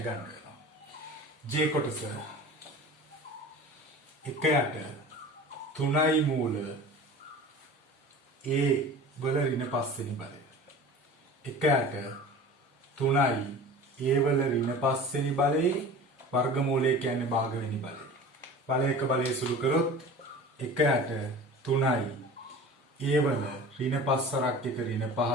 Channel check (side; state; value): both; normal; correlation 0.38